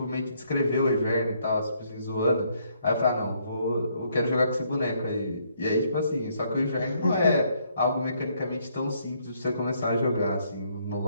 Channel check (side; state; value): both; inverted; correlation -0.70